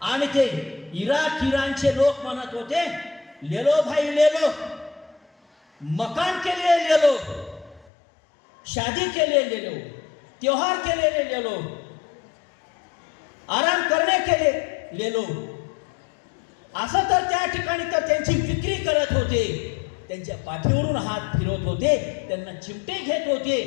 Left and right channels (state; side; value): drops out; right; at 7.9 s